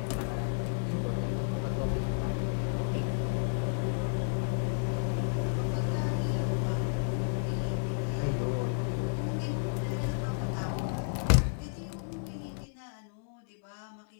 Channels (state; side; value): silent; right; digital silence